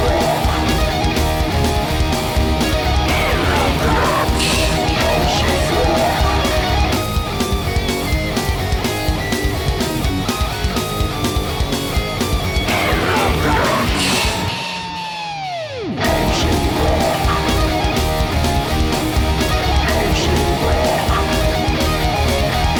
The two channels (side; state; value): both; identical; correlation 1.00